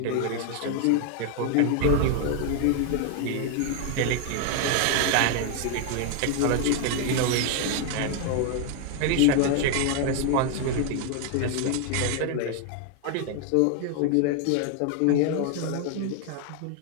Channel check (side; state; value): both; different; correlation 0.00